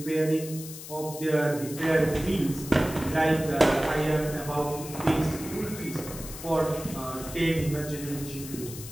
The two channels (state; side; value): noise; left; hiss, 12 dB below the sound